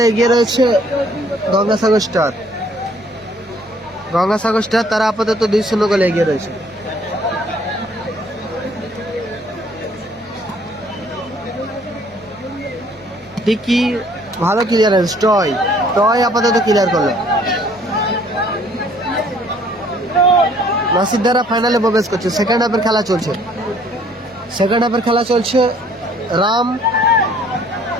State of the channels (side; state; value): both; normal; correlation 0.59